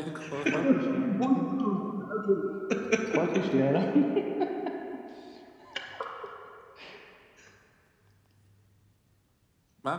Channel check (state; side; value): identical; both; correlation 1.00